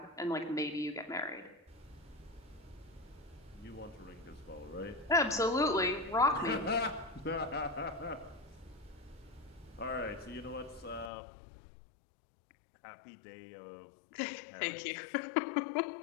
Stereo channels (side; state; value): right; drops out; at 11.1 s